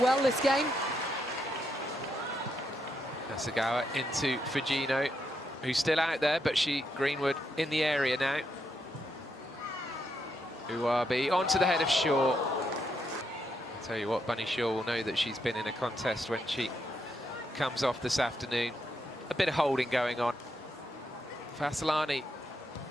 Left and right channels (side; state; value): both; normal; correlation 0.80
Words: this game. Hasegawa into Fujino, who's still out there, but Greenwood in the area now. Uwabi onto the head of Shaw. I'll tell you what, Bunny Shaw will know that she's been in a contest when she comes off this afternoon. A bit of holding going on. Fasalani.